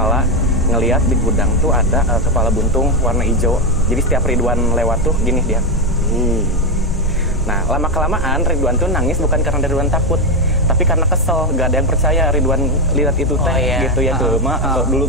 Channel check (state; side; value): normal; both; correlation 0.07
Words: ngelihat di gudang tuh ada kepala buntung warna hijau. Jadi setiap Ridwan lewat tuh gini dia. Nah, lama kelamaan Ridwan tuh nangis bukan karena Ridwan takut, tapi karena kesel, gak ada yang percaya Ridwan lihat itu teh gitu ya. Ke dulu